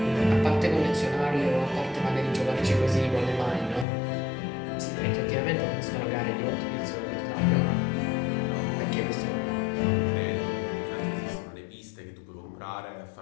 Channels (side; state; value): right; drops out; at 3.9 s